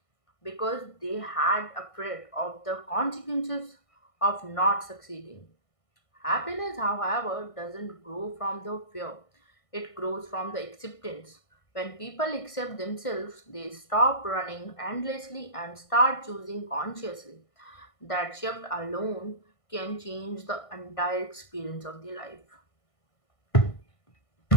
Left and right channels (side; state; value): right; late; 1.5 ms